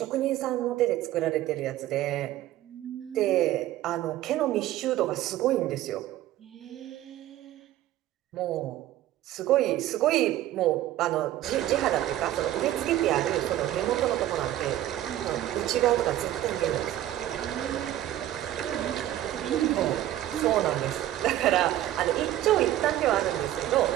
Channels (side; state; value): left; quieter; 13.5 dB